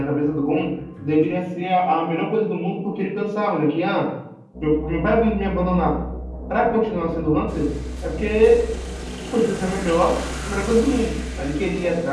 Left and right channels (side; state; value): both; identical; correlation 1.00